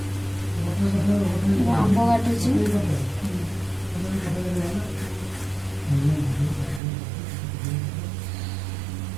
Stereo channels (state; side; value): drops out; left; at 6.8 s